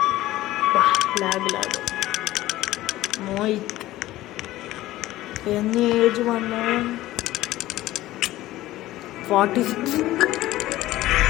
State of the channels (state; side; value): quieter; right; 16.1 dB